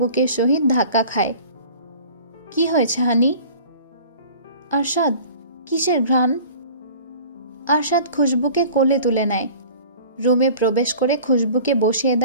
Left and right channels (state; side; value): inverted; both; correlation -0.44